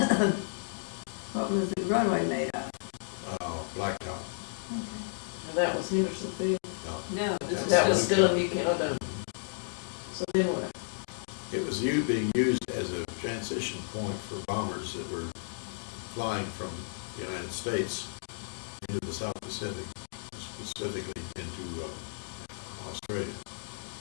What was the runway made of? Blacktop. Okay. Now that was Henderson Field. No, That's- That was still in New Canada. So then what? It was being used as a transition point for bombers that were flying from the United States into the South Pacific, specifically into Australia.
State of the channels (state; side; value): silent; right; digital silence